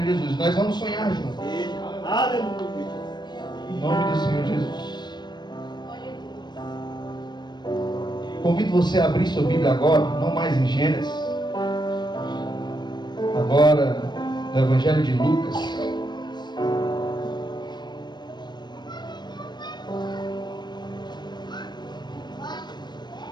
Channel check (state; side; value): late; right; 0.21 ms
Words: Jesus. Nós vamos sonhar juntos. Em nome do Senhor Jesus. Convido você a abrir sua Bíblia agora, não mais em Gênesis, agora no Evangelho de Lucas.